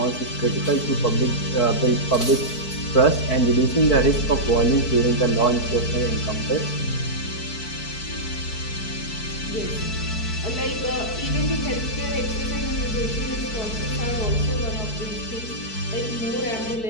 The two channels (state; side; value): late; right; 4.6 ms